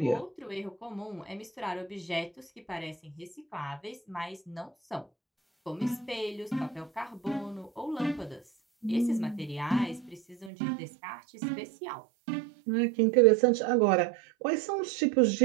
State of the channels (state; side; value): drops out; left; at 10.5 s